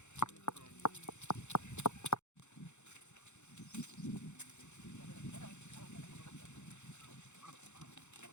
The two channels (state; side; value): late; right; 0.83 ms